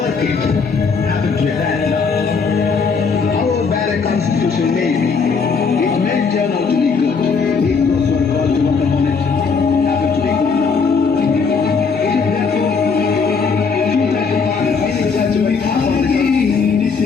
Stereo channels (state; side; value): quieter; right; 5.2 dB